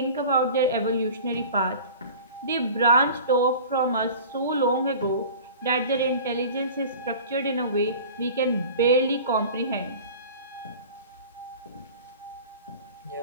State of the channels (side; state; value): both; inverted; correlation -0.40